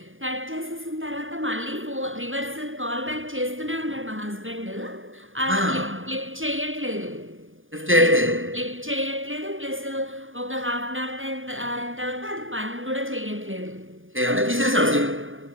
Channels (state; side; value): late; left; 0.58 ms